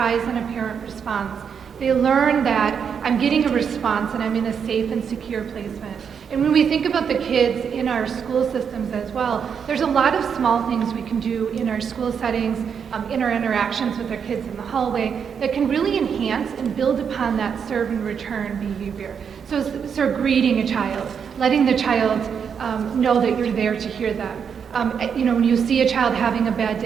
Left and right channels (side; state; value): left; quieter; 7.0 dB